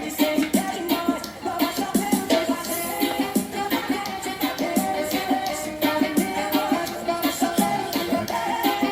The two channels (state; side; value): identical; both; correlation 1.00